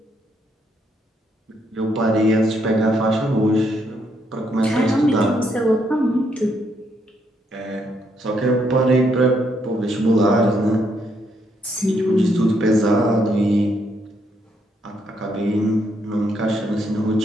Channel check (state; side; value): normal; both; correlation 0.74